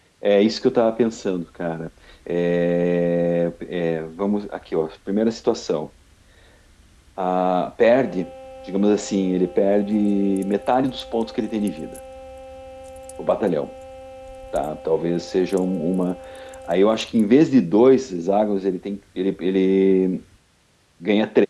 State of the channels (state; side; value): identical; both; correlation 1.00